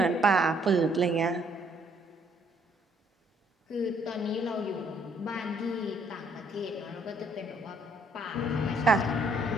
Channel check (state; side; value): normal; both; correlation 0.66